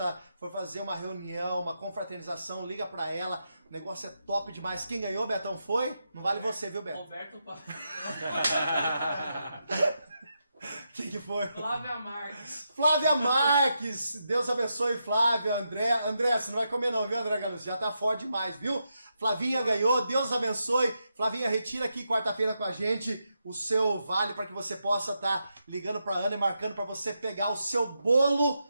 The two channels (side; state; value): both; inverted; correlation -0.84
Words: for fazer uma reunião, uma confraternização, liga pra ela. O negócio é top demais. Quem ganhou, Betão, foi? Não vale você, viu, Beto? Roberto Quem que foi? Flávia Marques. Flávia Marques. Deus abençoe, Flávia. André, você não vai comer não, viu, André Galucci? Já tá forte demais, viu? Flavinha ganhou, Deus abençoe. Flavinha, retira aqui quarta-feira com a gente o seu vale para que você possa estar ligando para Ana e marcando para você pegar o seu bolo